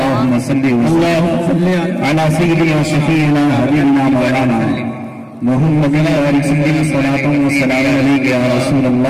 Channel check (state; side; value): identical; both; correlation 1.00